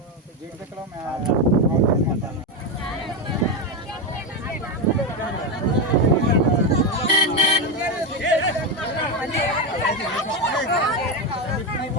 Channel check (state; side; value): normal; both; correlation 0.10